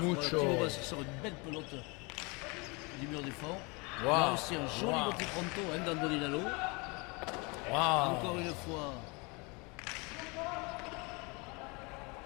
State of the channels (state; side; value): quieter; right; 28.6 dB